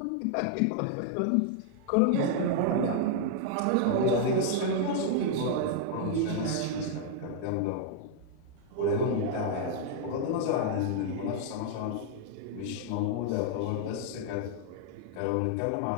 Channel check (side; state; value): both; different; correlation -0.01